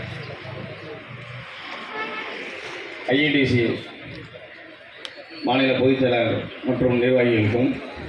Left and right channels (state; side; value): identical; both; correlation 1.00